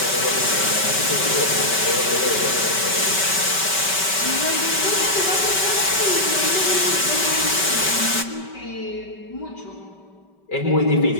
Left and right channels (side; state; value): right; late; 5.2 ms